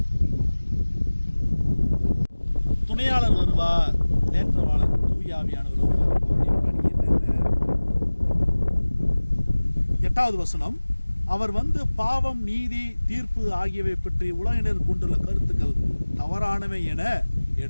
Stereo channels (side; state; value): both; inverted; correlation -1.00